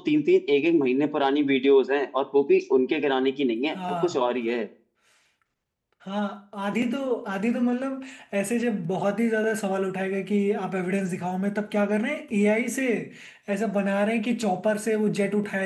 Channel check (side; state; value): both; identical; correlation 1.00